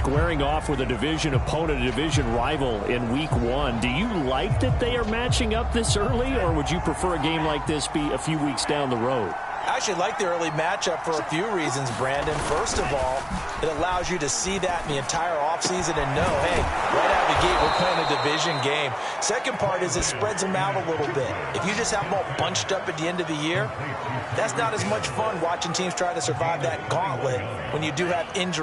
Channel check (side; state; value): both; identical; correlation 1.00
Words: off with a division opponent, a division rival in week 1. Do you like that they are matching up this early, or would you prefer a game like this be a few weeks down the road? I actually like the early matchup for a few reasons, Brandon. First of all, it allows you to see that in the entire offseason and know, hey, right out of the gate, we're playing a division game. Second part is it spreads them out a little bit. If you just have them all bunched up at the end of the year, that's not as much fun watching teams try to survive that gauntlet when you do have